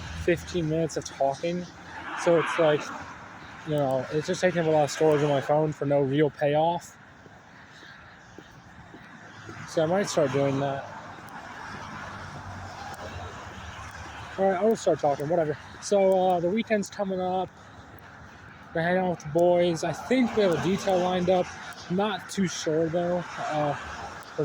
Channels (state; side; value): identical; both; correlation 1.00